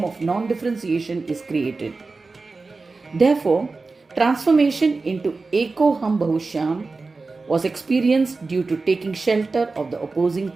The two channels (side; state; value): left; quieter; 3.8 dB